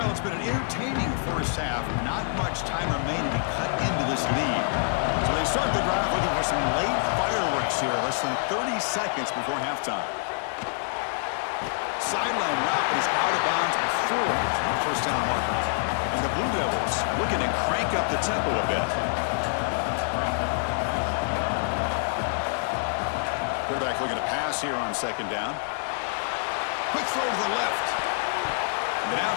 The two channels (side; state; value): right; silent; digital silence